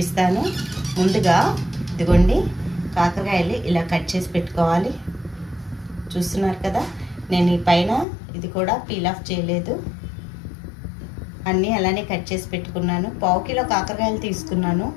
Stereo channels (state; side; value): drops out; right; at 8.1 s